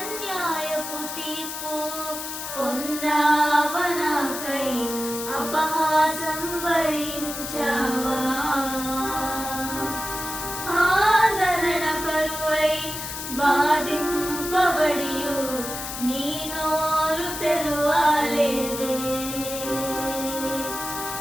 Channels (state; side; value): noise; left; hiss, 7 dB below the sound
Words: తీర్పు పొందావా నాకై, అపహాసం భరించావా. ఆదరణ కరువై బాధింపబడియు నీ నోరు తెరువలేదే.